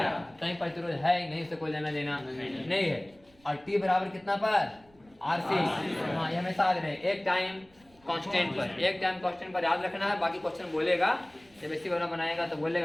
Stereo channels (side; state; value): right; noise; rumble, 30 dB below the sound